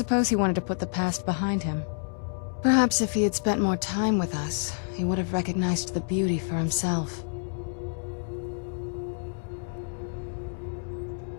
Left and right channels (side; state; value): right; silent; 59 dB below the other